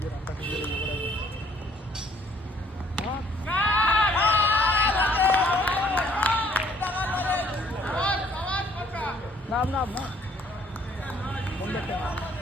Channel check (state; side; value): normal; both; correlation 0.62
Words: যে রাস্তা ফিরে নাম নাম না